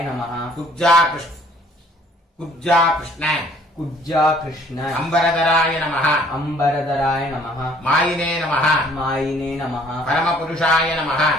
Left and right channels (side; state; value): both; normal; correlation 0.58